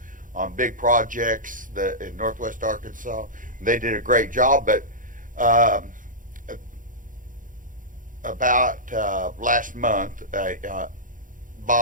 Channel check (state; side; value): late; left; 0.39 ms